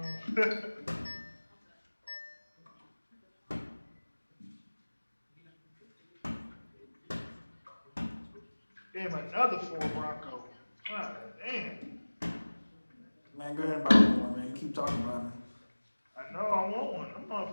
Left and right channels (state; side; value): inverted; both; correlation -1.00